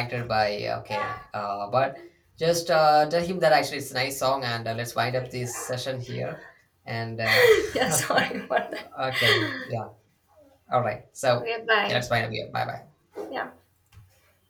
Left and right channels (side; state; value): both; identical; correlation 1.00